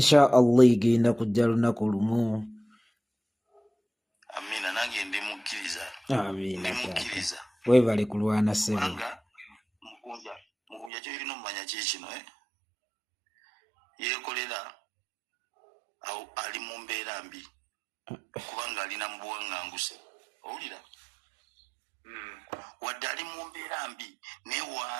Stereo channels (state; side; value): drops out; left; at 10.9 s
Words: Allah igenda kujja lunaku lumu. Amina nange ndimukkiriza Amina webale kulwana ssebo Mukunja kyolina omumanya kikino yeekolera ali mu mbeera mbi kubanga alina mu buwaŋŋanguse owulira wadde ali mu mbeera mbi naye